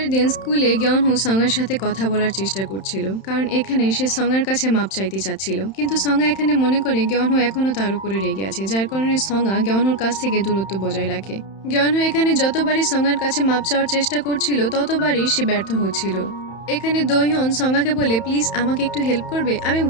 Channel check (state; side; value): late; right; 31 ms